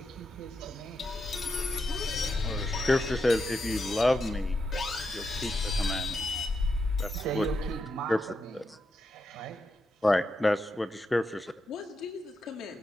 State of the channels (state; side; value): normal; both; correlation 0.85